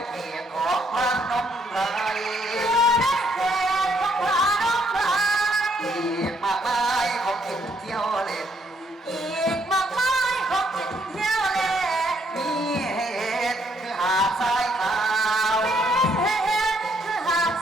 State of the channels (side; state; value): both; normal; correlation 0.70